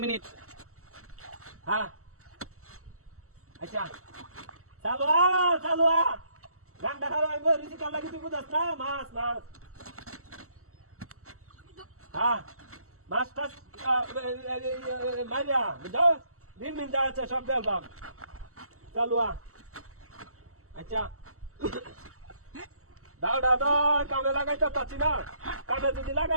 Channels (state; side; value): late; left; 0.63 ms